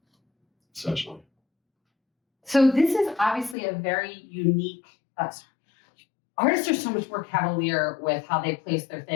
essentially. So this is obviously a very unique. Artists are so much more cavalier with how they place their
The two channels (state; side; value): drops out; right; at 3.6 s